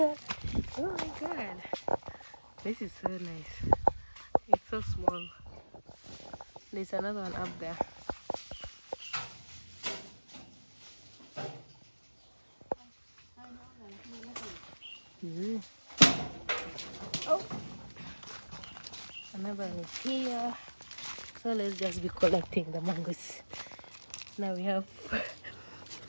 Oh my god, this is so nice. It's so small. There's another one up there. Oh, another one is here. So let's just be collecting the mangoes. Now we have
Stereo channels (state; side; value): inverted; both; correlation -1.00